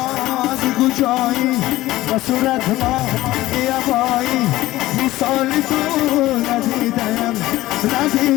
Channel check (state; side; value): quieter; right; 16.8 dB